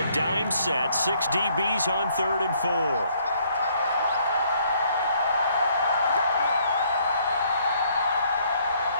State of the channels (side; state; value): both; inverted; correlation -0.66